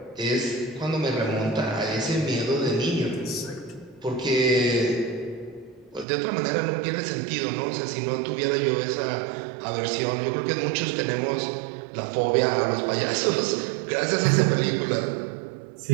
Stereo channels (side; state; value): left; drops out; at 6.1 s